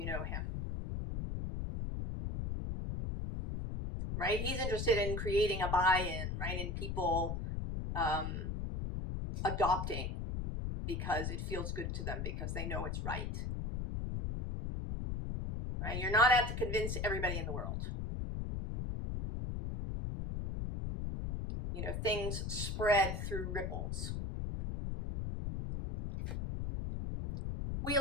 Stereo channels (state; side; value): noise; left; rumble, 3 dB below the sound